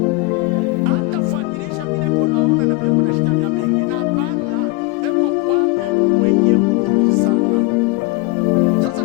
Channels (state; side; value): quieter; right; 21.7 dB